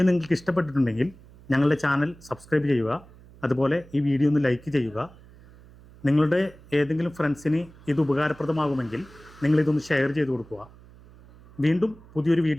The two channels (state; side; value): noise; right; hum, 23 dB below the sound